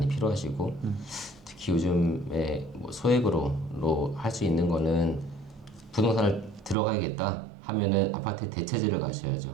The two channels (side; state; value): left; drops out; at 6.8 s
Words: 필요하시고 특히 요즘에 뭐 소액으로 할 수 있는 거는 부동산을 들어가야겠다 하면은 아파트의 대체제를